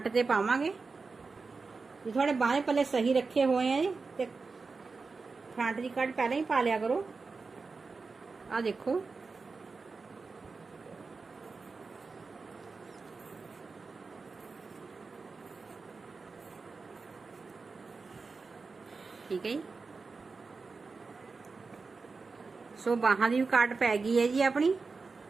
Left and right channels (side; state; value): left; quieter; 4.3 dB